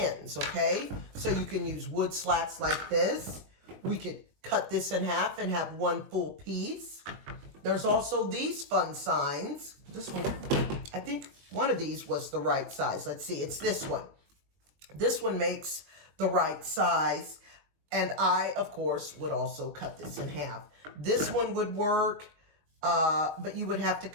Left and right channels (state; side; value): late; left; 21 ms